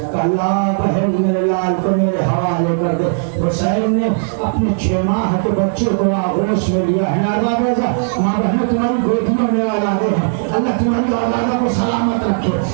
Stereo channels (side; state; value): left; silent; digital silence